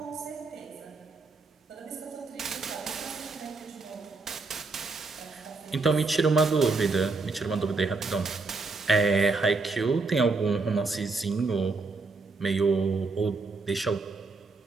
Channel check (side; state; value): left; quieter; 3.9 dB